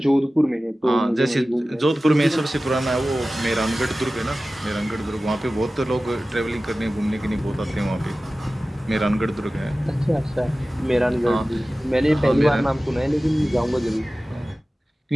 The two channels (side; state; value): both; normal; correlation 0.96